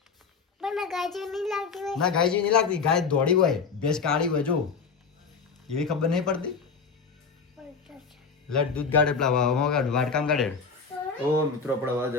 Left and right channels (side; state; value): right; quieter; 5.3 dB